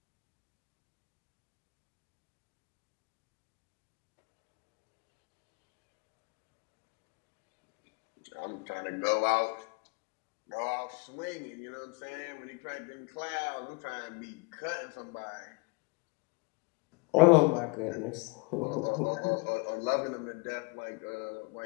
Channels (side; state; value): right; quieter; 28.7 dB